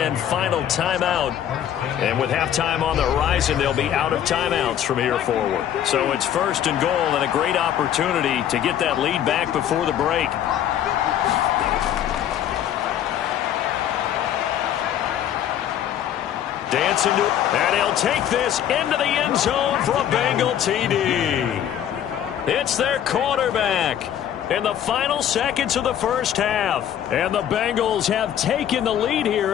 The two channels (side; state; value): right; quieter; 10.4 dB